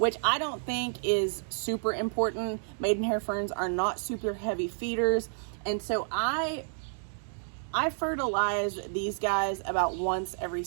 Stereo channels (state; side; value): silent; left; digital silence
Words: I don't think is super important. Maidenhair ferns are not super heavy feeders, and so I fertilize these guys about once every